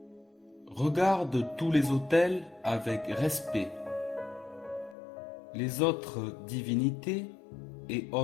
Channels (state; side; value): drops out; right; at 5.0 s